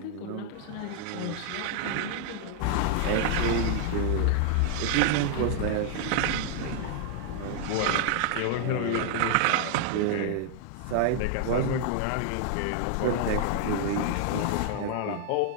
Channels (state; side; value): different; both; correlation 0.00